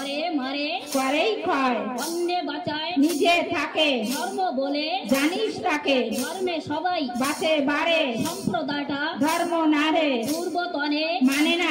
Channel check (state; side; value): identical; both; correlation 1.00